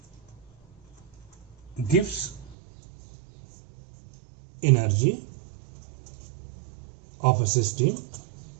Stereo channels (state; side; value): drops out; left; at 2.6 s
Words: Gibbs energy of a system